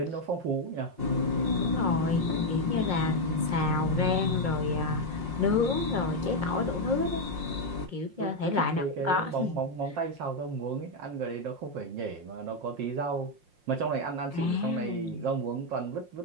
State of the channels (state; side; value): late; left; 5.6 ms